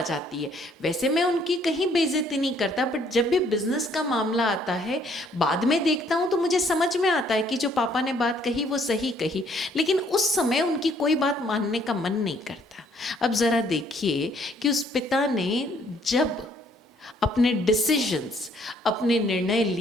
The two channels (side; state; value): both; normal; correlation 0.64